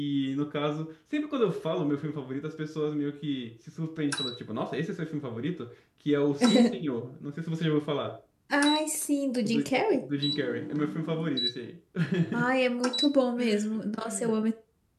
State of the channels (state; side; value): identical; both; correlation 1.00